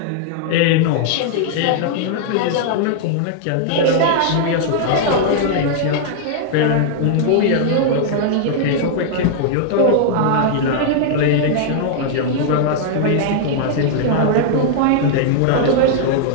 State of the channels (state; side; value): different; both; correlation -0.01